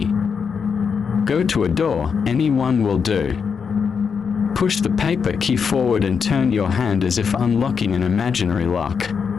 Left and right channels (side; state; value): right; quieter; 6.2 dB